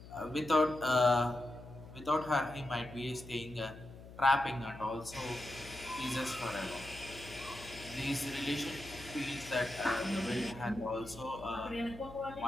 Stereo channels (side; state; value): left; noise; hum, 16 dB below the sound